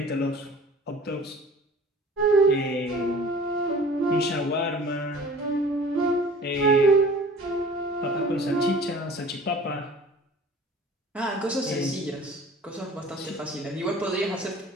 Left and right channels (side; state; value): both; normal; correlation 0.45